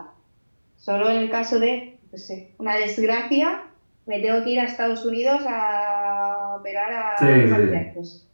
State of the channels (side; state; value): both; inverted; correlation -1.00